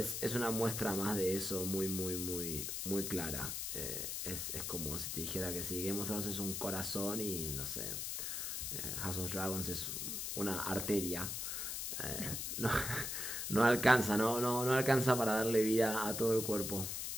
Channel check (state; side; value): noise; left; hiss, 3 dB below the sound